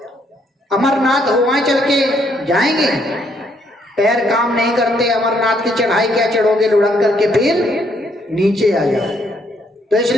अमरनाथ हो वहां चल के जाएंगे। पैर काम नहीं करते, अमरनाथ की चढ़ाई क्या चढ़ोगे, लुढ़क करके फिर नीचे आ जाओ। तो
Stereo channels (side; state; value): both; normal; correlation 0.71